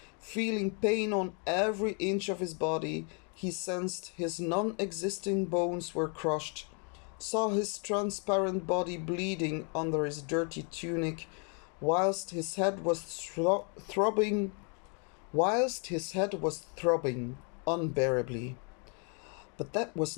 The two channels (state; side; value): quieter; right; 38.0 dB